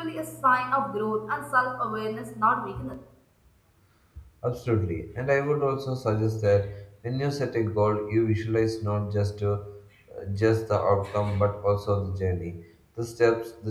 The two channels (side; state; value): both; identical; correlation 1.00